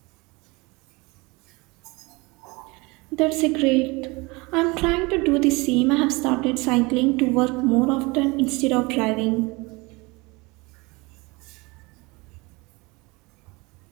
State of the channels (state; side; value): quieter; left; 25.2 dB